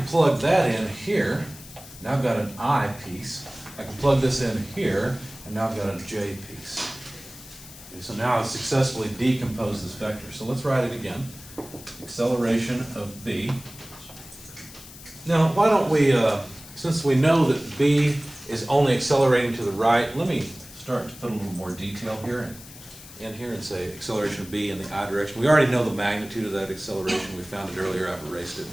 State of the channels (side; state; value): left; noise; hiss, 17 dB below the sound